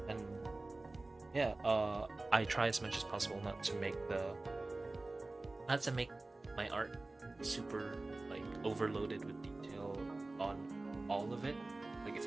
and yeah, I try as much as possible not to make my art super like overloaded with detail on all of it. Like if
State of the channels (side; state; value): left; quieter; 3.0 dB